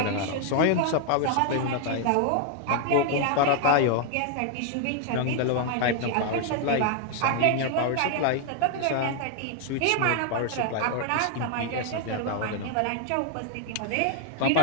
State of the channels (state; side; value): different; both; correlation 0.00